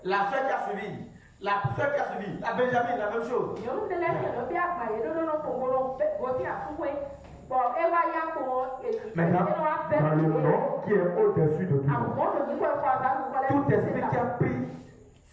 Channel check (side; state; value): both; identical; correlation 1.00